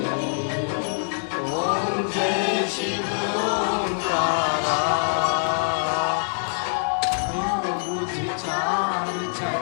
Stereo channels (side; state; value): right; silent; digital silence